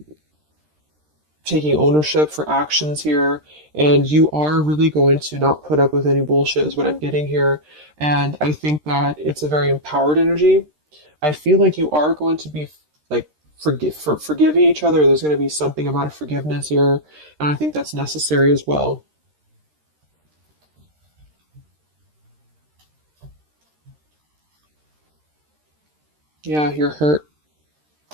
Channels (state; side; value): late; left; 13 ms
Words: taking ownership for actions here, and you are really going to not put up with any bullshit is what I'm getting here. And I think that it's a very empowered energy. I feel like you are going to be like forgiving each other. There's going to be something about a forgiveness here, and I think that's necessary as well. Yeah, you're hurt.